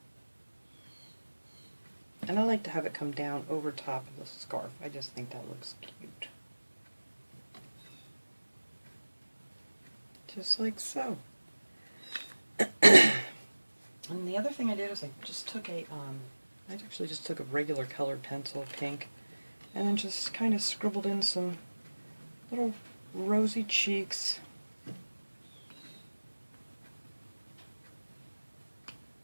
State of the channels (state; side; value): inverted; both; correlation -1.00